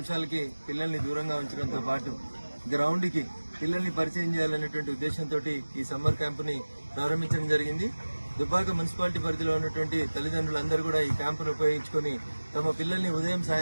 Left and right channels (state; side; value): inverted; both; correlation -1.00